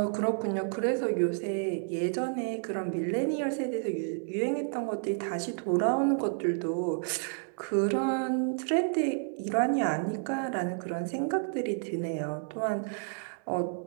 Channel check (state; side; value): silent; left; 57 dB below the other